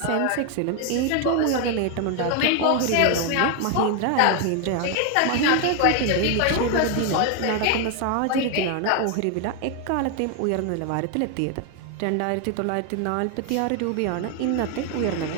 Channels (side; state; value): both; different; correlation 0.01